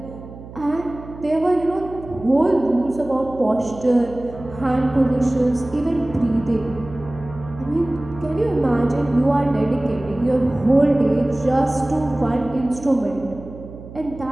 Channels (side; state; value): right; noise; hum, 15 dB below the sound